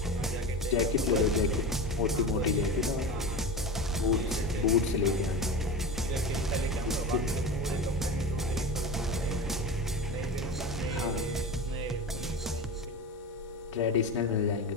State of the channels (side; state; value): both; normal; correlation 0.27